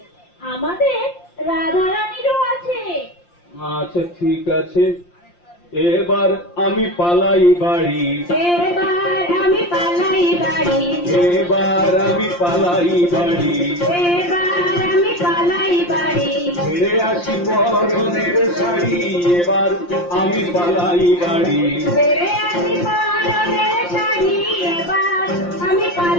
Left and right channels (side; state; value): right; late; 5.7 ms